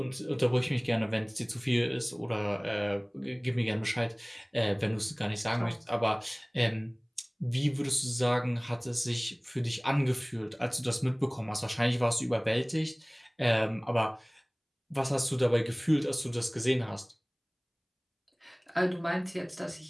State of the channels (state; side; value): identical; both; correlation 1.00